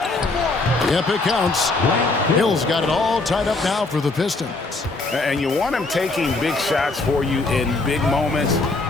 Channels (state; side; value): quieter; right; 3.4 dB